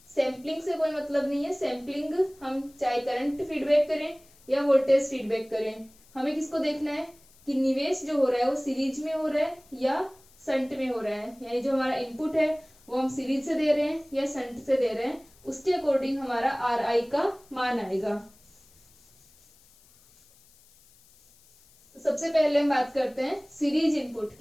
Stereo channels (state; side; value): noise; left; hiss, 28 dB below the sound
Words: सैम्पलिंग से कोई मतलब नहीं है। सैम्पलिंग हम चाहे करंट फीडबैक करें या वोल्टेज फीडबैक करें, हमें किसको देखना है कि निवेश जो हो रहा है वो सीरीज में हो रहा है या शंट में हो रहा है, यानी जो हमारा इनपुट है वो हम सीरीज से दे रहे हैं या शंट से दे रहे हैं, उसके अकॉर्डिंग हमारा आर आई का मान आएगा। तो सबसे पहले हम बात करते हैं सीरीज इनपुट